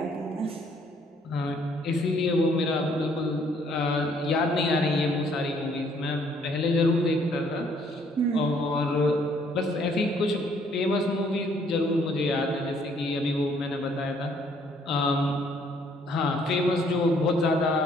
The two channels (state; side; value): normal; both; correlation 0.64